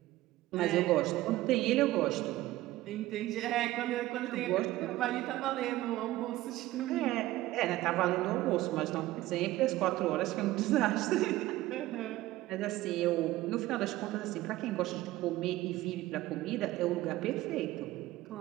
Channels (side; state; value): left; quieter; 16.7 dB